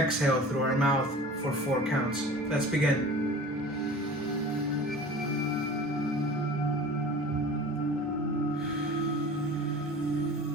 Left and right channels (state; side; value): normal; both; correlation 0.40